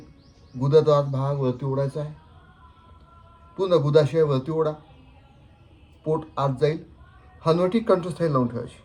गुदाचा भाग वरती ओढायचा आहे. पूर्ण गुदाशय वरती ओढा. पोट आत जाईल. हनुवटी कंठस्थायी लावून ठेवायची.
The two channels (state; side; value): identical; both; correlation 1.00